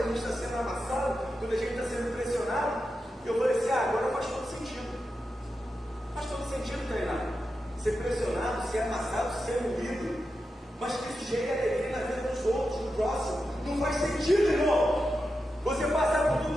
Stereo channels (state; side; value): normal; both; correlation 0.89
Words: gente está sendo amassado, quando a gente está sendo pressionado, eu falei assim, agora faz todo sentido. Faz todo sentido, treinar. Ser pressionado, ser amassado, ser moído. Mas que isso gere alegria na vida dos outros, do próximo. Não faz sentido, irmão. Você passar por